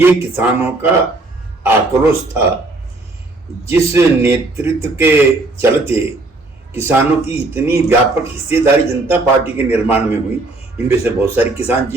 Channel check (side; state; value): left; quieter; 3.1 dB